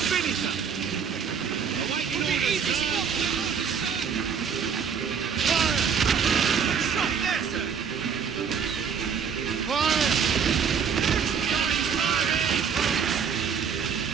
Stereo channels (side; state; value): left; quieter; 6.8 dB